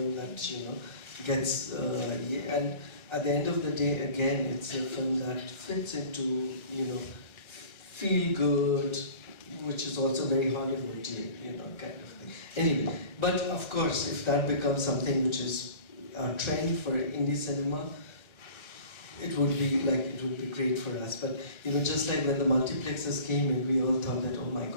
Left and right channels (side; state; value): right; late; 1.3 ms